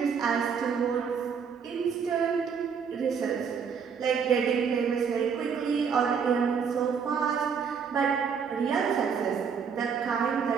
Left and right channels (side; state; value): left; quieter; 6.5 dB